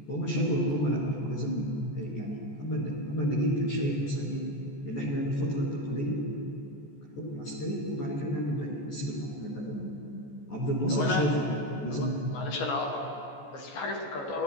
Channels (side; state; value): right; late; 14 ms